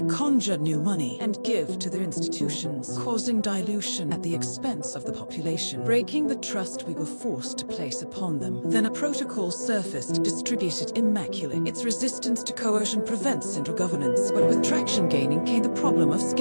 conjure new money and give to their institutions, causing dilution at the expense of the population, breaking the trust we were forced to place upon them. Then a protocol surfaced, distributed immaculate. Its resistance to coercion prevents central governance, but with traction gaining came the problem of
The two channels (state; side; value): inverted; both; correlation -1.00